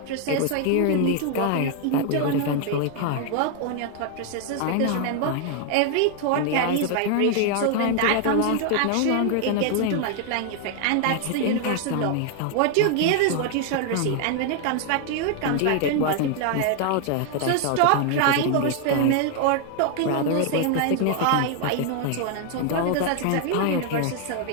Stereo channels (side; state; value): both; different; correlation 0.00